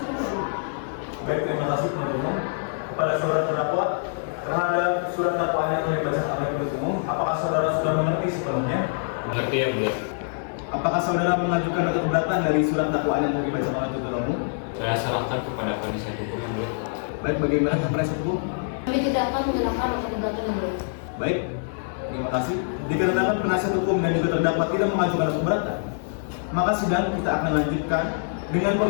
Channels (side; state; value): right; silent; digital silence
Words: Baik, terima kasih penuntut umum. Kepada saudara terdakwa terhadap surat dakwaan yang telah dibacakan oleh penuntut umum, apakah saudara sudah mengerti sepenuhnya? Mengerti yang mulia. Apakah saudara mengajukan nota keberatan dari surat dakwaan yang telah dibacakan oleh penuntut umum? Saya serahkan kepada penasihat hukum yang mulia. Baik, bagaimana penasihat hukum? Kami tidak akan menyerahkan nota keberatan yang mulia. Baik, terima kasih. Dikarenakan penasihat hukum dan juga terdakwa tidak mengajukan nota keberatan, maka sidang kita akan lanjutkan dengan